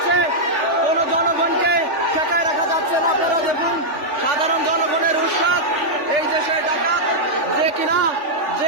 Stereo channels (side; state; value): left; late; 3.4 ms